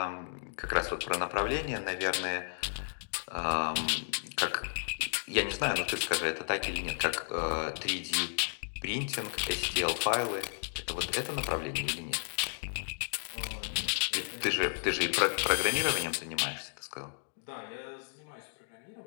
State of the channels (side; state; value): right; silent; digital silence